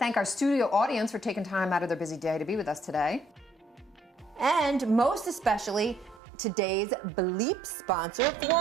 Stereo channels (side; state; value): left; drops out; at 6.2 s